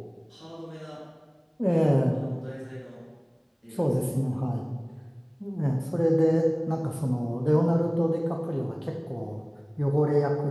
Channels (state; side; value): identical; both; correlation 1.00